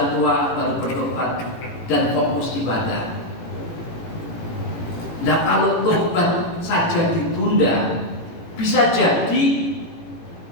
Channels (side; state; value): right; late; 18 ms